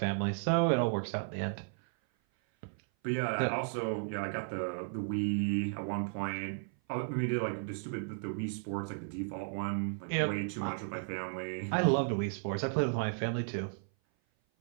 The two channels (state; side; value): silent; left; 55 dB below the other